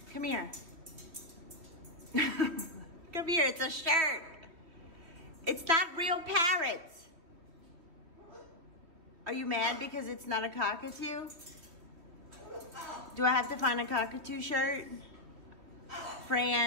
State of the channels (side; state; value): left; late; 3.4 ms